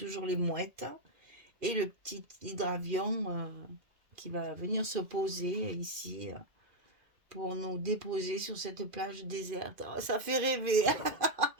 les mouettes, et le petit hydravion qui va venir se poser ici pour nous déposer sur cette plage déserte. Oh, ça fait rêver.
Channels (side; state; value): left; late; 2.5 ms